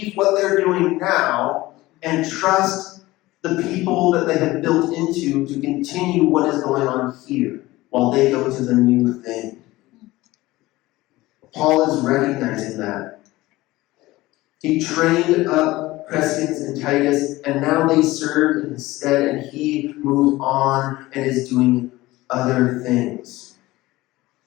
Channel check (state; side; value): quieter; right; 18.7 dB